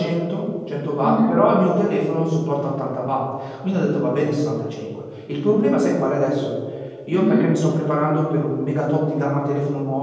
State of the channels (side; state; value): both; identical; correlation 1.00